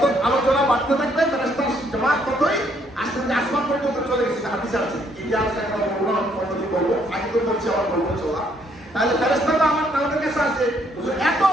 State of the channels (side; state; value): both; normal; correlation 0.69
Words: আলোচনা বাড়তে থাকবে ফেরেশতার জামাত ততই আস্তে আস্তে আসমান পর্যন্ত চলে গেছে। হাদিসে আছে। ইতিহাসটা একটা বলবো, আগে তো বলছি আবার বলবো চলা। তাহলে ফেরেশতাটা আমাদের কাছে আছে এত